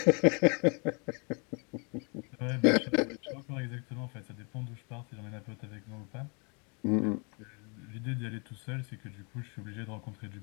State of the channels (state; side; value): quieter; right; 34.5 dB